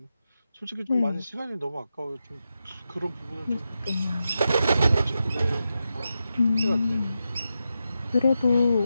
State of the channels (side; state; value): both; inverted; correlation -0.88